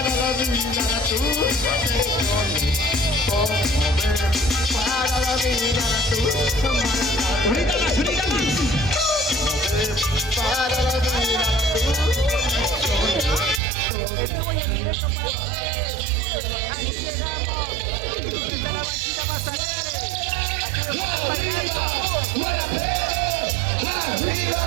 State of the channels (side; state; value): left; drops out; at 13.6 s